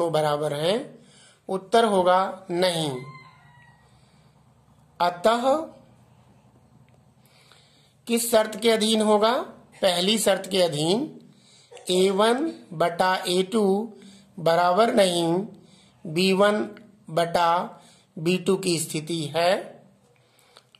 बराबर हैं? उत्तर होगा नहीं। अतः किस शर्त के अधीन होगा? पहली शर्त के अधीन A1/A2 बराबर नहीं B1/B2 की स्थिति है।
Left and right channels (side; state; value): both; identical; correlation 1.00